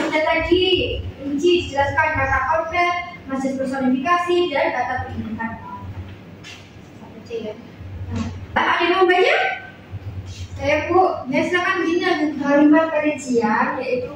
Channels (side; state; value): both; identical; correlation 1.00